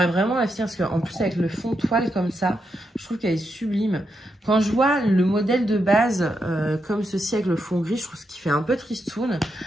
vraiment la finir parce qu'en plus, avec le fond toile comme ça, je trouve qu'elle est sublime. Quand je vois le modèle de base comme ceci avec le fond gris, je trouve qu'il fait un peu tristoun.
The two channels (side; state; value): both; normal; correlation 0.83